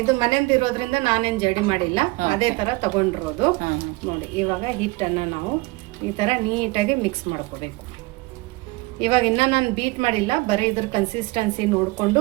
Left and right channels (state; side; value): quieter; left; 23.3 dB